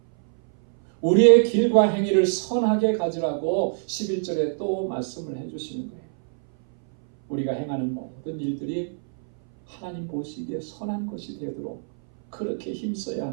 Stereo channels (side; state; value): left; silent; 59 dB below the other